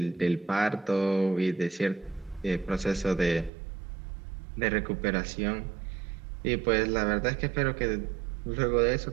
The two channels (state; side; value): drops out; left; at 3.5 s